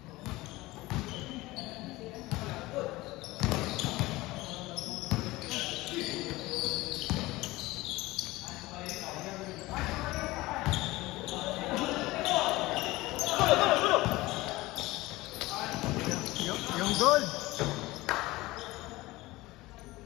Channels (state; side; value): quieter; right; 19.6 dB